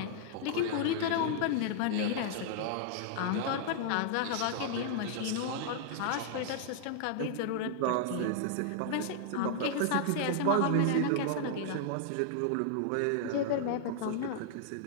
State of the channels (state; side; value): different; both; correlation -0.01